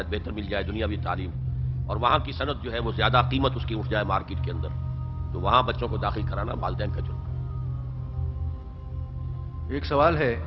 بہتر مل جائے، دنیاوی تعلیم، اور وہاں کی صنعت جو ہے وہ زیادہ قیمت اس کی اٹھ جائے مارکیٹ کے اندر، تو وہاں بچوں کو داخل کرانا والدین کا جرم ہے. ایک سوال ہے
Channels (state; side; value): identical; both; correlation 1.00